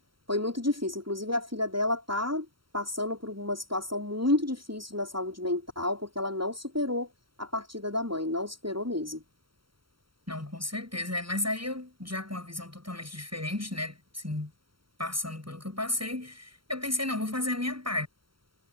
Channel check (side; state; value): left; late; 0.74 ms